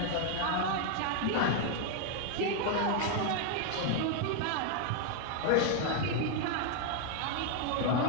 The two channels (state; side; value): different; both; correlation 0.00